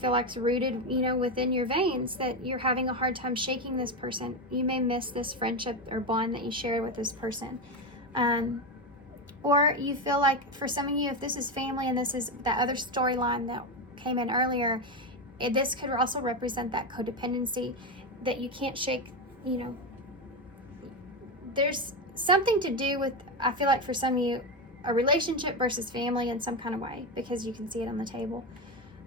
like is rooted, you know, within your veins, that you're having a hard time shaking this person. You may miss this friendship or bond that you shared with this person. Or you feel like, for some of you, if this is family and this is that other storyline that came in earlier, this could also represent that codependency that you can't shake, you know. There's something to do with, I feel like for some of you, a relationship versus family in some kind of way, because you can see it on the table.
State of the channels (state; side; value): normal; both; correlation 0.13